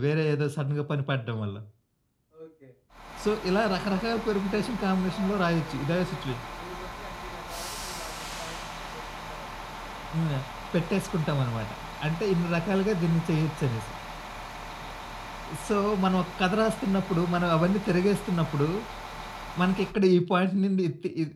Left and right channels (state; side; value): identical; both; correlation 1.00